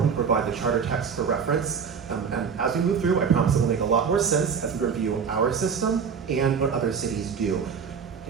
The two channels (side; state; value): left; quieter; 6.5 dB